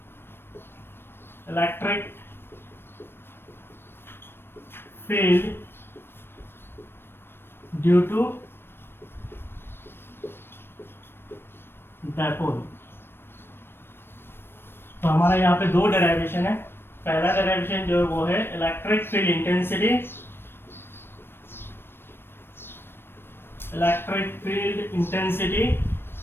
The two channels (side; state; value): right; late; 0.11 ms